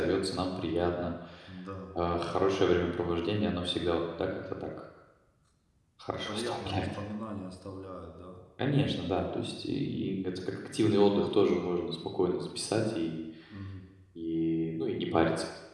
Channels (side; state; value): both; identical; correlation 1.00